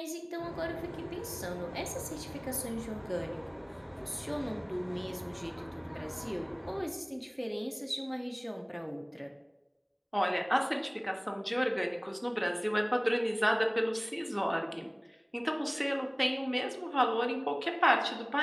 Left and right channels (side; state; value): both; identical; correlation 1.00